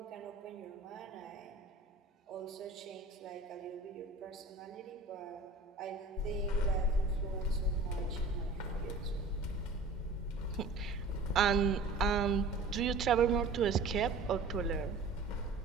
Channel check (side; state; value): left; quieter; 3.5 dB